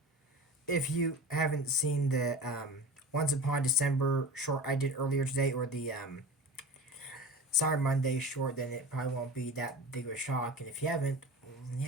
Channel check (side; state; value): both; normal; correlation 0.33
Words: If you haven't seen the Once Upon December short I did earlier today, or the Cyber Monday short, then it probably won't be that big of a shock. And if you haven't,